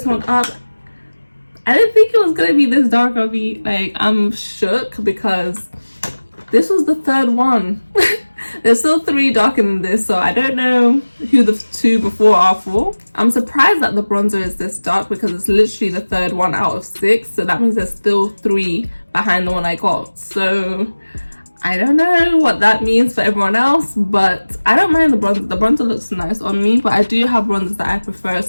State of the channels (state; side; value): inverted; both; correlation -1.00